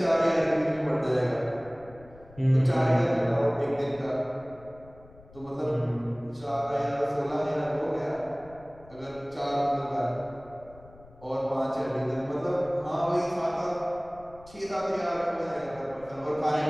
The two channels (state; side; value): noise; left; rumble, 23 dB below the sound